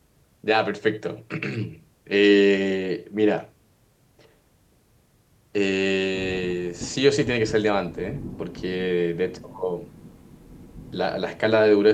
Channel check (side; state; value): both; identical; correlation 1.00